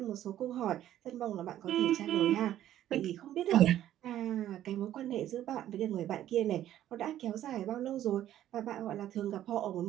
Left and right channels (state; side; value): quieter; left; 12.2 dB